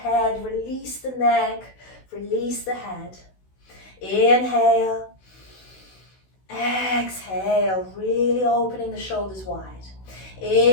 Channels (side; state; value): right; late; 16 ms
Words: release the neck, release the head. Inhale. Exhale, really opening the shoulders wide.